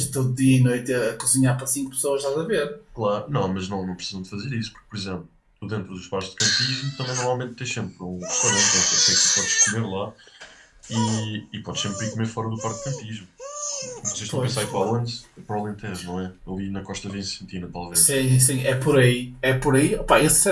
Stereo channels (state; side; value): identical; both; correlation 1.00